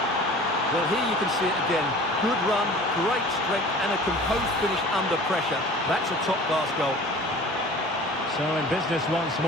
Well, here you can see it again. Good run, great strength, and a composed finish under pressure. That's a top-class goal. So in business once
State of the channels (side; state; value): both; normal; correlation 0.43